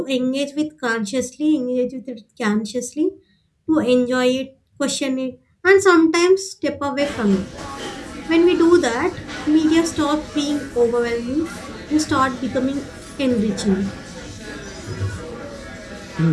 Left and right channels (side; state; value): both; identical; correlation 1.00